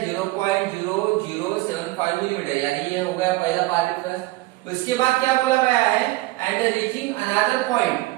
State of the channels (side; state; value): left; quieter; 19.5 dB